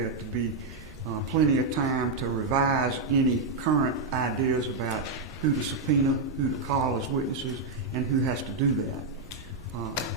to be plenty of time to revise any current ideas about who to subpoena, who to call as witnesses, and who has to do that.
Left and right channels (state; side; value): quieter; left; 3.6 dB